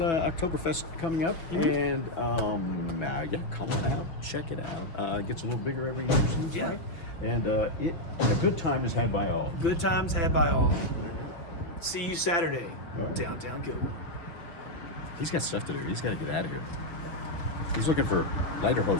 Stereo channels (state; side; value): late; right; 6.2 ms